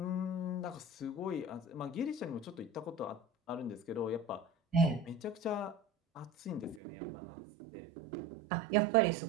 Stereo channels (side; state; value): left; drops out; at 6.8 s